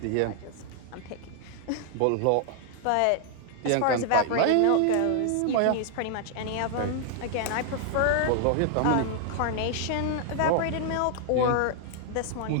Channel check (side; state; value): both; different; correlation 0.00